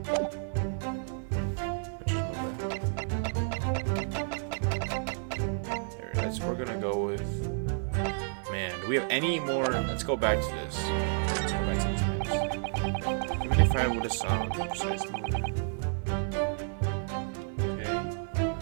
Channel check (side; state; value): left; silent; digital silence